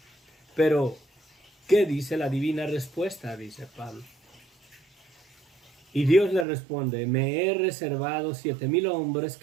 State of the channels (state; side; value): drops out; left; at 6.5 s